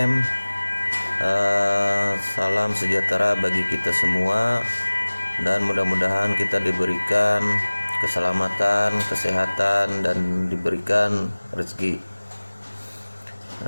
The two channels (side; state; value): both; inverted; correlation -1.00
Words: Salam sejahtera bagi kita semua, dan mudah-mudahan kita diberikan keselamatan, kesehatan, dan diberikan rezeki.